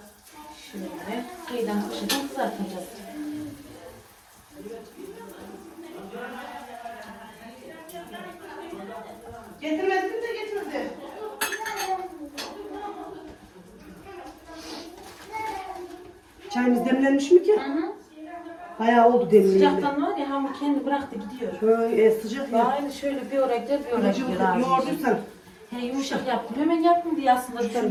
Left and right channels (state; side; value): identical; both; correlation 1.00